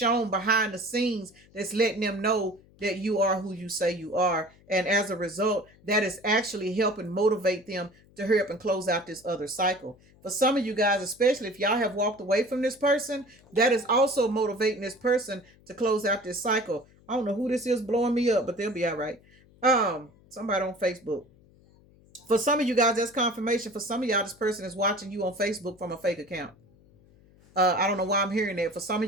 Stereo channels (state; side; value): noise; left; hum, 28 dB below the sound